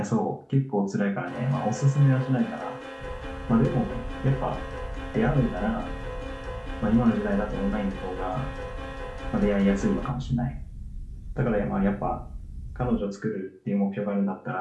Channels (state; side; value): identical; both; correlation 1.00